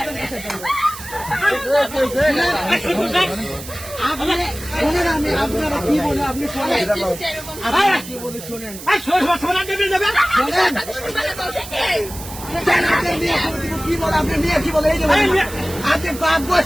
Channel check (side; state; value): right; noise; hiss, 13 dB below the sound